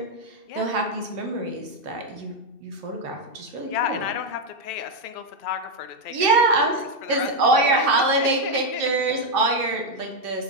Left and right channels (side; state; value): left; late; 2.9 ms